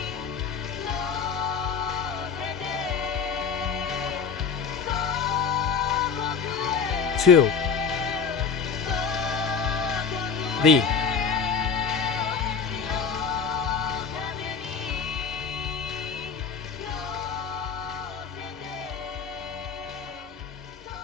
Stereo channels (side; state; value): right; quieter; 6.0 dB